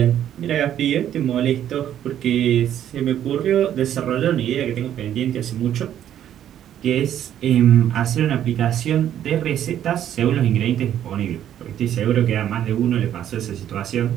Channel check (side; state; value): left; quieter; 10.7 dB